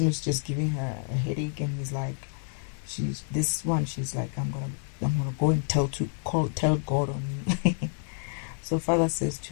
who's just giving her a headache, and he's like, she's like, I'm gonna go and tell God on me. So Father says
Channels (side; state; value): right; silent; 58 dB below the other